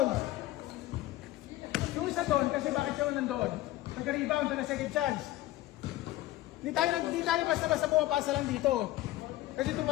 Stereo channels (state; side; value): quieter; right; 16.2 dB